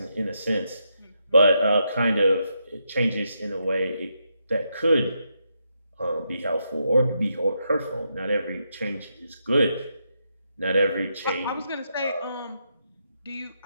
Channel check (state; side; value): inverted; both; correlation -0.81